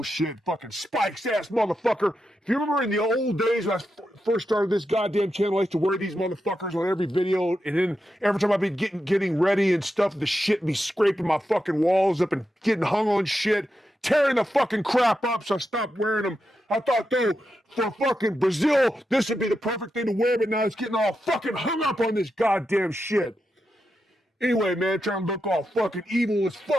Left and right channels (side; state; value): both; normal; correlation 0.87